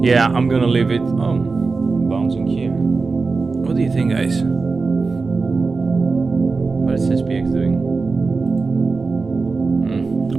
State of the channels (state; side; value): quieter; left; 4.2 dB